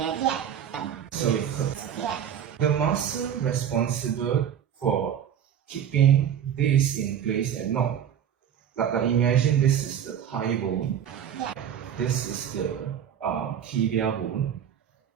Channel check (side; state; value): left; quieter; 9.1 dB